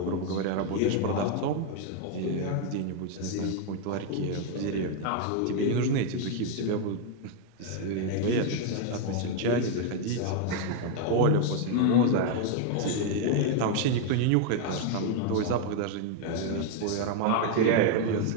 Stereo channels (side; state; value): both; different; correlation 0.01